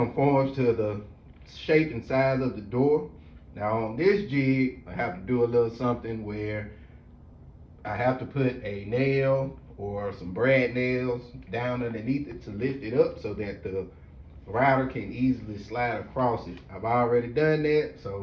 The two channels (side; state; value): both; identical; correlation 1.00